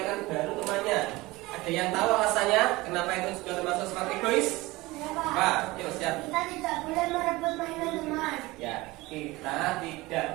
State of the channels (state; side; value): quieter; left; 20.8 dB